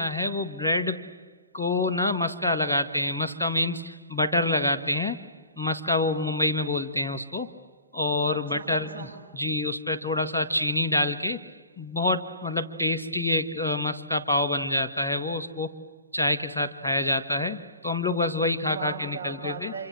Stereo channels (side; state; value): both; inverted; correlation -0.45